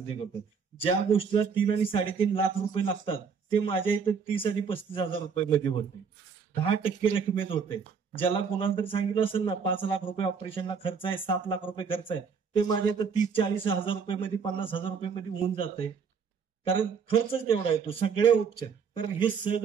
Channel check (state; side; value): quieter; left; 6.1 dB